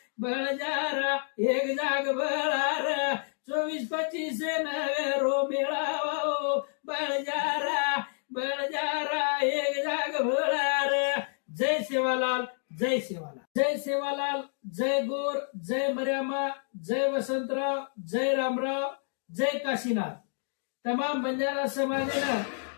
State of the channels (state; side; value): silent; right; digital silence